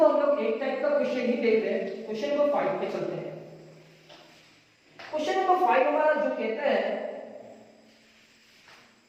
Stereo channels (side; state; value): both; identical; correlation 1.00